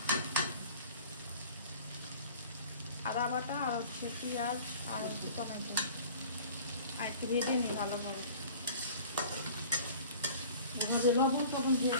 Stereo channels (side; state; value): both; inverted; correlation -0.45